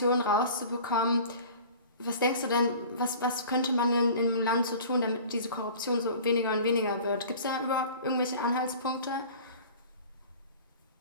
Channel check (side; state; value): both; inverted; correlation -0.43